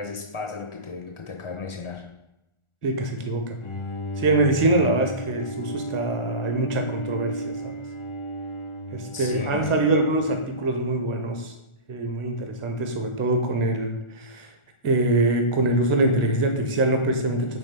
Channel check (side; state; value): right; late; 1.4 ms